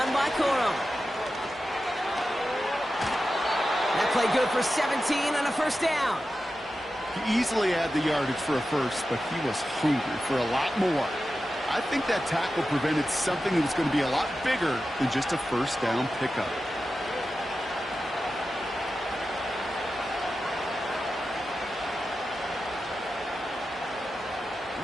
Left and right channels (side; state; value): both; normal; correlation 0.92